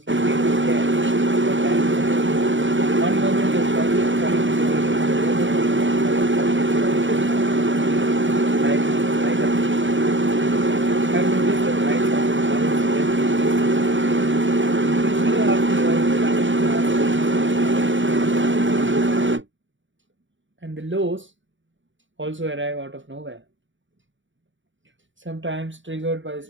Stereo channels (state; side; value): late; left; 0.55 ms